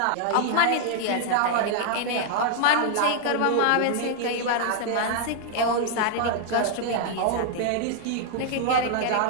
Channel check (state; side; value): different; both; correlation -0.01